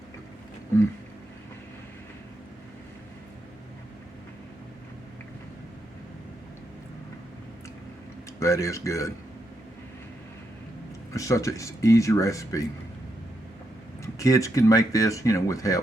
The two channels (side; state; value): both; normal; correlation 0.81